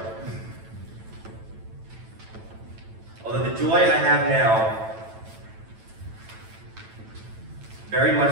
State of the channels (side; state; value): left; late; 9.0 ms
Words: Although the joy I have now very